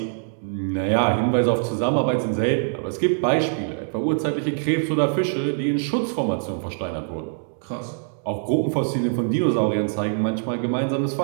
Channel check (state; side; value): silent; left; 63 dB below the other